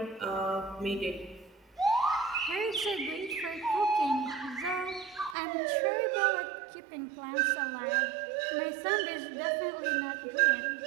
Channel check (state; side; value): drops out; left; at 5.4 s